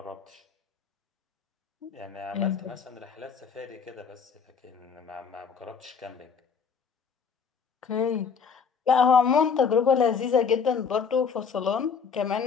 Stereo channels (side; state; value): right; quieter; 6.1 dB